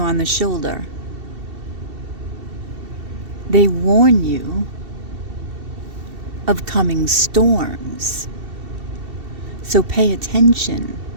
the shoulder. They warn you of coming storms. So pay attention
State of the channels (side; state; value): left; late; 2.7 ms